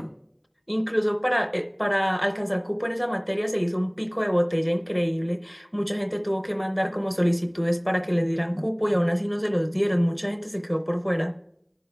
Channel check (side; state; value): both; identical; correlation 1.00